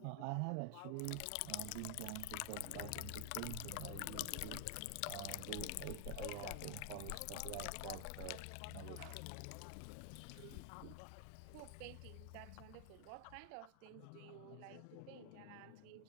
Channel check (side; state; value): both; different; correlation 0.00